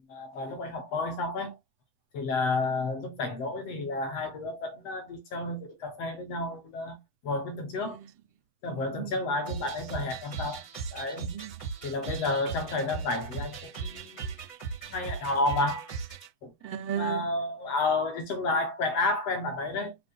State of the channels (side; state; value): right; late; 7.9 ms